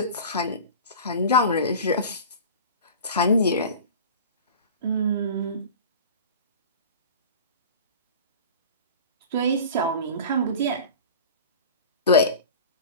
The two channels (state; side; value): inverted; both; correlation -0.35